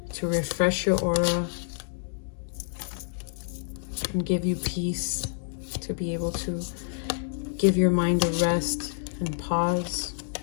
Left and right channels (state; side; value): silent; right; digital silence